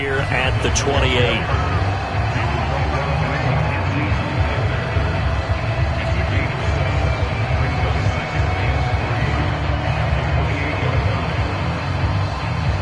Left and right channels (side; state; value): both; identical; correlation 1.00